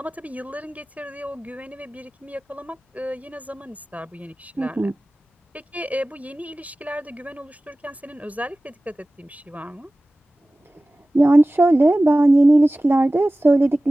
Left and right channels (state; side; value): normal; both; correlation 0.97